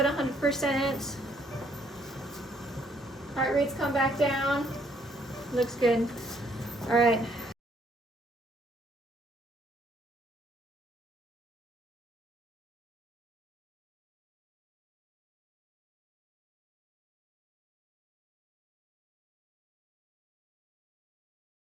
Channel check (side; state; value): both; normal; correlation 0.67